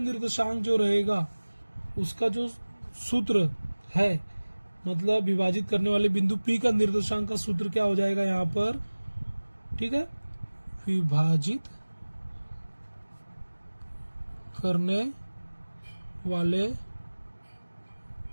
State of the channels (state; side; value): inverted; both; correlation -1.00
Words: जो रहेगा उसका जो सूत्र है, मतलब विभाजित करने वाले बिंदु P का निर्देशांक का सूत्र क्या हो जाएगा यहाँ पर, ठीक है, विभाजित करने वाले